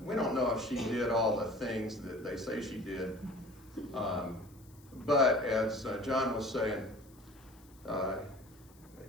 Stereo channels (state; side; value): noise; left; hiss, 27 dB below the sound